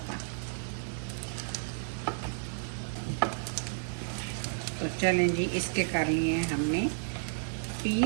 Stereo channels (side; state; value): left; silent; digital silence